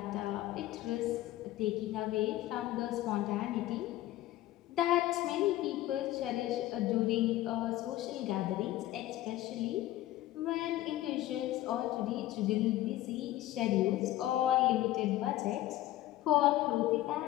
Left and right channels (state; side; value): quieter; right; 15.0 dB